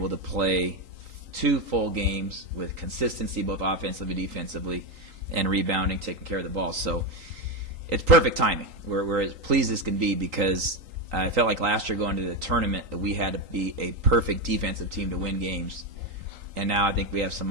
to play 2 full games with consistency both offensively, defensively, and rebounding, taking care of the ball. So it's perfect timing. We're as pleased as can be because I felt like last year going to the tournament that we had to be a perfect defensive team to win games. And now I think we have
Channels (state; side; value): late; left; 3.8 ms